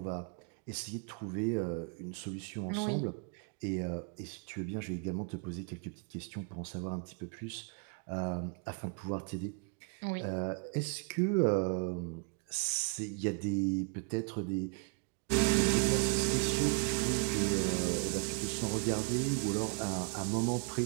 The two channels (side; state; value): left; quieter; 39.2 dB